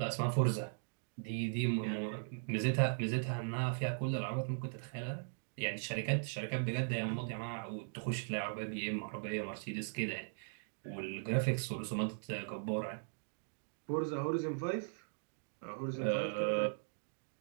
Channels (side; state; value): left; silent; digital silence